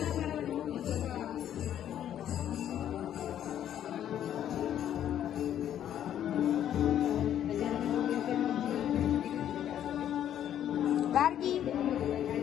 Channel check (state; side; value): quieter; right; 10.5 dB